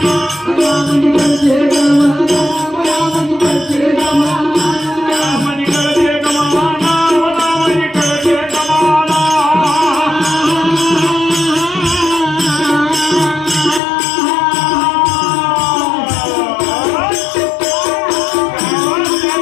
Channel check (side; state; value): right; drops out; at 13.8 s